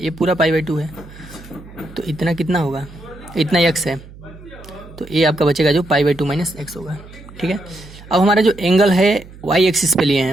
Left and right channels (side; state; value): right; noise; hum, 19 dB below the sound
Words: ये पूरा π/2 है, तो इतना कितना होगा, इतना x है, तो ये आपका बचेगा जो π/2 - x होगा, ठीक है। अब हमारा जो एंगल है y एक्सिस पे लिए